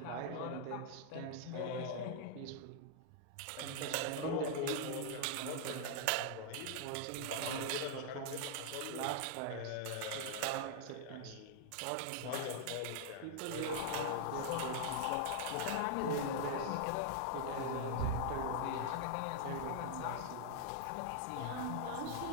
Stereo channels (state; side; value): different; both; correlation -0.01